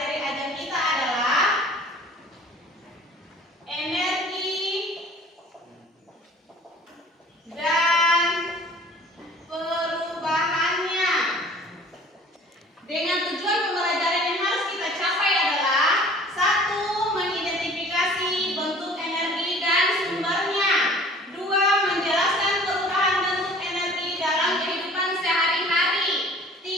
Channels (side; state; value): both; normal; correlation 0.48